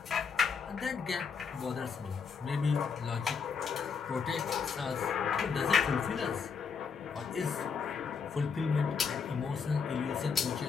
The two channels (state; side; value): quieter; right; 5.9 dB